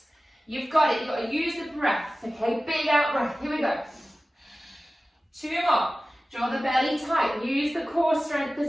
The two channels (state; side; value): normal; both; correlation 0.96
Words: You've got it. You've got to use the breath. Okay, big out breath. Here we go. 2 more. Draw the belly tight. Use the core strength